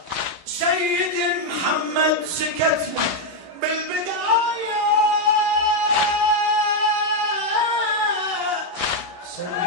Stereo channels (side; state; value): left; late; 11 ms